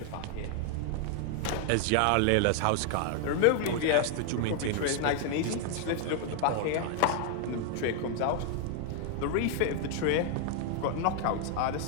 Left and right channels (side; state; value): both; different; correlation 0.00